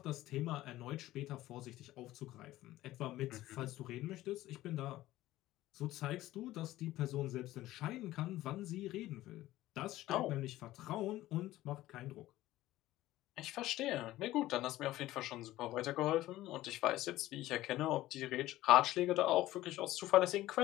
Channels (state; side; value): quieter; right; 15.8 dB